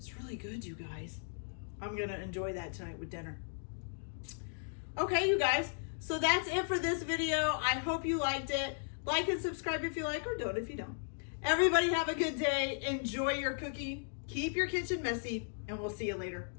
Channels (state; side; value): silent; right; digital silence